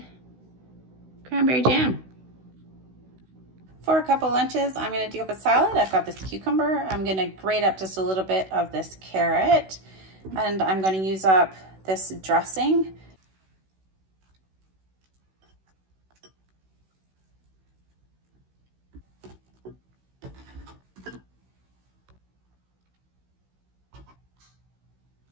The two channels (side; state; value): left; late; 16 ms